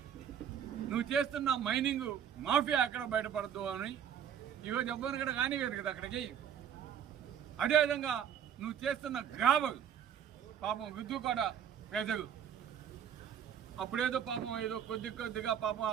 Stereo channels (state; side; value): quieter; left; 8.7 dB